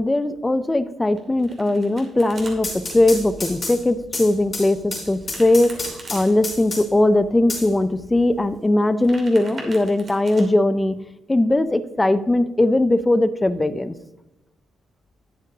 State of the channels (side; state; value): both; normal; correlation 0.96